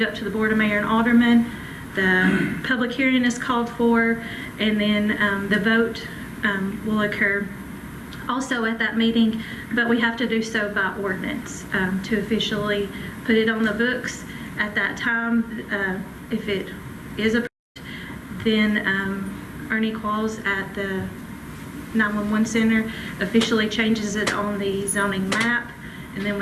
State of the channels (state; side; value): identical; both; correlation 1.00